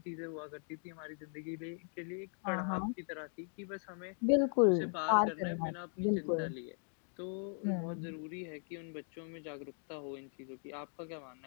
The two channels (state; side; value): silent; right; 52 dB below the other